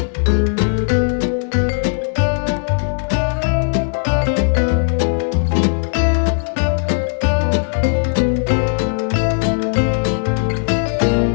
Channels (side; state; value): right; silent; digital silence